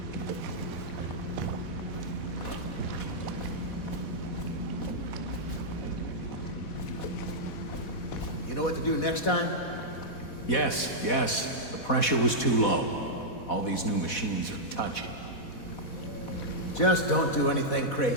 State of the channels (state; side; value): late; right; 4.1 ms